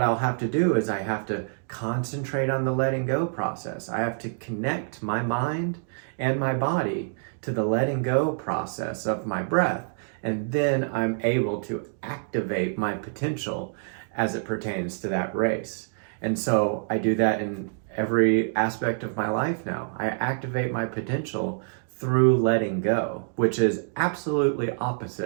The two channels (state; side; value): silent; left; digital silence